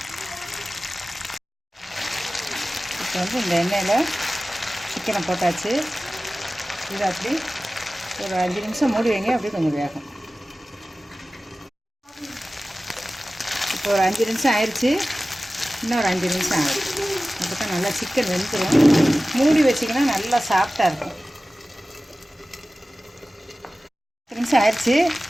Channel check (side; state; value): both; normal; correlation 0.96